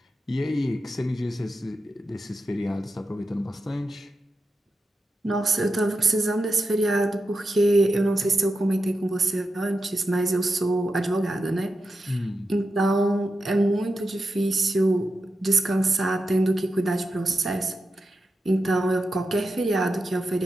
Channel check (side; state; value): both; normal; correlation 0.89